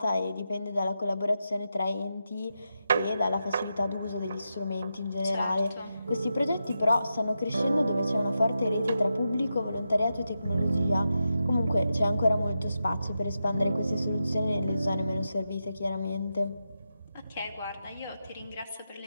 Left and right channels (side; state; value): both; inverted; correlation -0.88